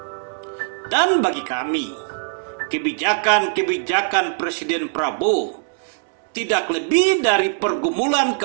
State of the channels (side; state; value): left; silent; digital silence